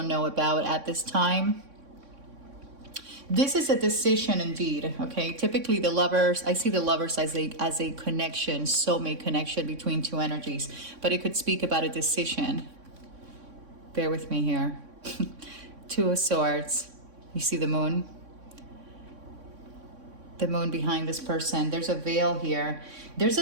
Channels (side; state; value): left; late; 3.6 ms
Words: know about at this time. This is a decision indeed, okay? Typically the lovers, I see the lovers as a connection, soulmate connection between 2 energies, but it could speak about a decision. Bear with me here. 2 of Swords. You see the moon? The moon behind this person. There's a veil here. There's